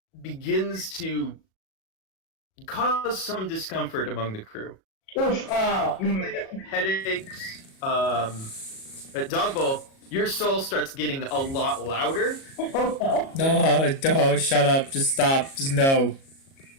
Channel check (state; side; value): late; right; 37 ms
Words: begins to cause some discomfort among the crew. Oof. Headaches. At Dog Bowl, your soul starts getting a lot louder. Oh no. No, shut up. Just stop. Just no.